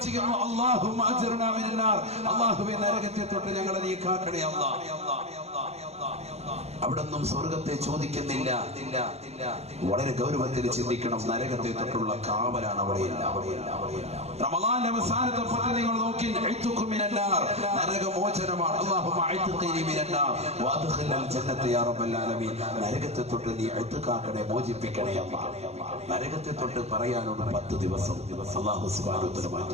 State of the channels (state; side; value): late; left; 0.31 ms